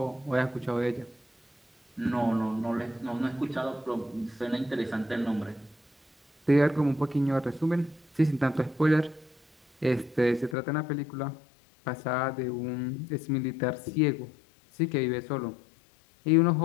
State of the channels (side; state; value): right; drops out; at 10.6 s